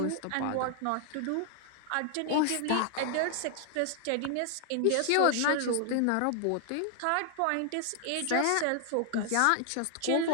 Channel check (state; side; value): different; both; correlation 0.00